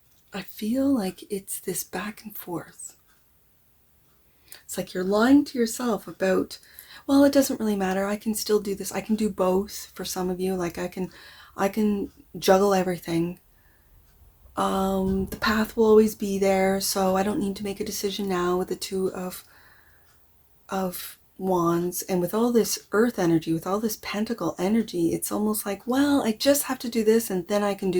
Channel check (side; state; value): both; identical; correlation 1.00